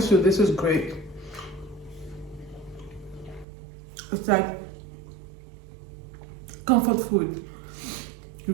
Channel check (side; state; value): left; drops out; at 3.5 s